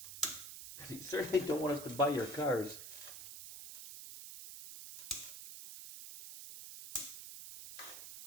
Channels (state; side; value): noise; right; hiss, 11 dB below the sound